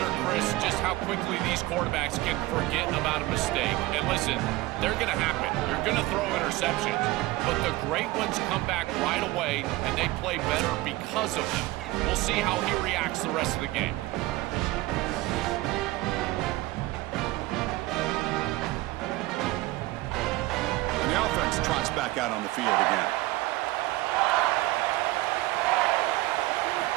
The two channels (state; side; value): quieter; left; 18.9 dB